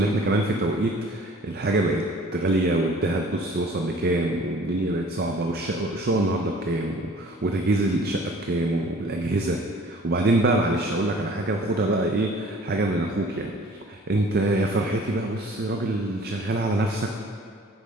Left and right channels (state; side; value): normal; both; correlation 0.50